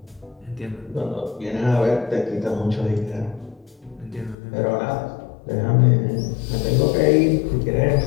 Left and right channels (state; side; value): drops out; right; at 4.4 s